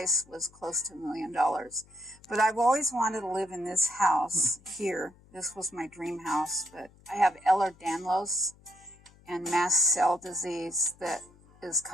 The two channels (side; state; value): left; noise; hum, 27 dB below the sound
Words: was close to $1 million. But I've always wanted to live in this house here. This was my dream house, but I have Ehlers-Danlos and mast cell disease that is